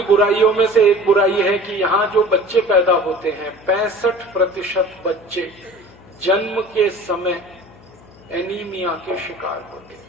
बुराइयों में से एक बुराई है कि यहां जो बच्चे पैदा होते हैं 65% बच्चे जन्म के समय एनीमिया के शिकार होते हैं।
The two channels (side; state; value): left; noise; hum, 24 dB below the sound